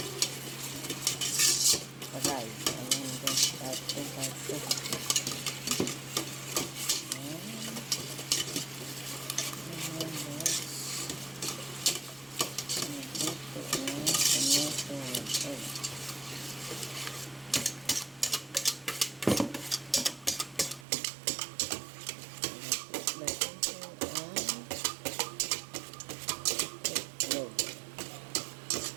palay. Ayan guys, part 2, part 2.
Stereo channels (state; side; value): drops out; left; at 20.9 s